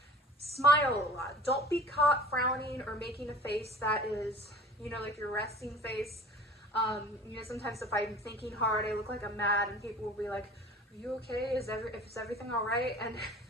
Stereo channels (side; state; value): both; normal; correlation 0.43